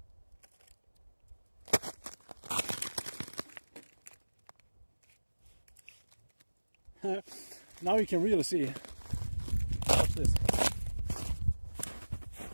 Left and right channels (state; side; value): inverted; both; correlation -1.00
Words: Now you can really see. Watch this.